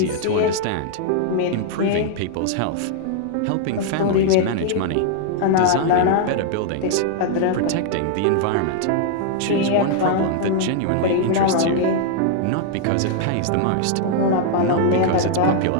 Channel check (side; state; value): both; different; correlation -0.01